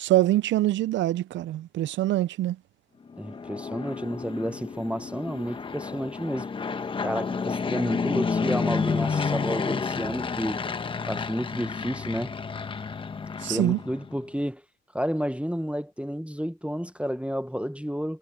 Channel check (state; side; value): normal; both; correlation 0.58